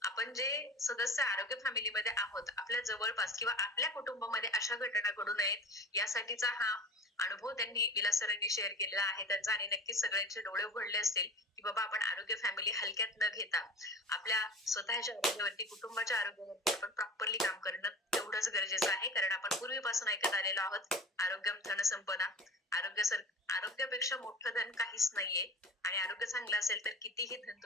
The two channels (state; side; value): normal; both; correlation 0.37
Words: आपण जे सदस्य आरोग्य फॅमिलीमध्ये आहोत आपल्या जवळपास किंवा आपल्या कुटुंबामध्ये अशा घटना घडू नयेत यासाठीचा हा अनुभव त्यांनी विलास सरांनी शेअर केलेला आहे त्यांचा, आणि नक्कीच सगळ्यांचे डोळे उघडले असतील की बाबा आपण आरोग्य फॅमिली हलक्यात न घेता आपल्या स्वतःच्या आरोग्यावरती, कुटुंबाच्या आरोग्यावरती आपण प्रॉपरली काम करणं तेवढंच गरजेचं आहे. कारण आपण पूर्वीपासून ऐकत आलेलो आहोत, आरोग्यम धन संपदा, आरोग्यापेक्षा मोठं धन काहीच नाहीये, आणि आरोग्य चांगलं असेल तर कितीही धन